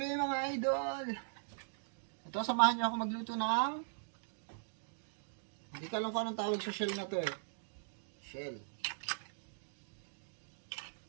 mga idol. Ito, samahan niyo ako magluto ng hindi ko alam kung anong tawag sa shell na to eh. Shell.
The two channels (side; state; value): left; silent; digital silence